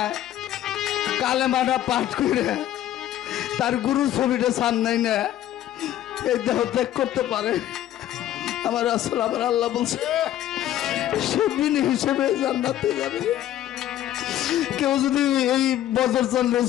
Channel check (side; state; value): right; quieter; 12.5 dB